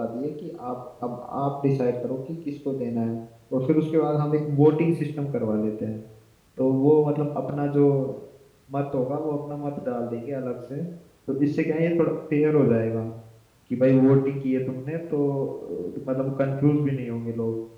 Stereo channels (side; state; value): both; identical; correlation 1.00